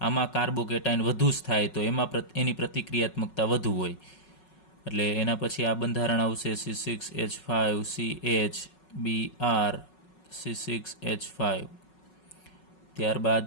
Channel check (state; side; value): late; right; 5.4 ms